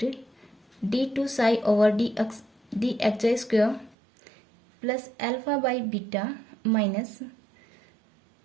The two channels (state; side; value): drops out; left; at 4.0 s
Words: d2 psi over D x I square plus alpha by beta minus